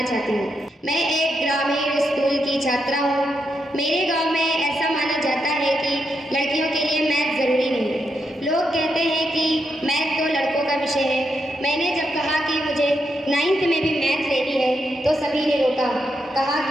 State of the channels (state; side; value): normal; both; correlation 0.82